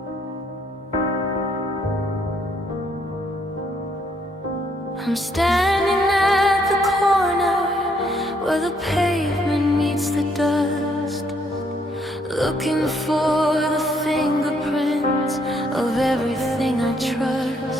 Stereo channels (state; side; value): normal; both; correlation 0.70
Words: I'm standing at the corner where the pavement meets the dust, looking for the fingerprints of everything I